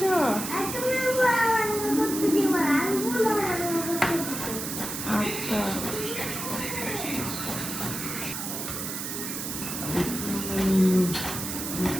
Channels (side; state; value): right; noise; hiss, 5 dB below the sound